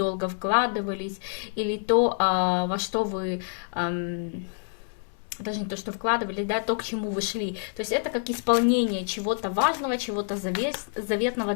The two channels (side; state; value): right; silent; 60 dB below the other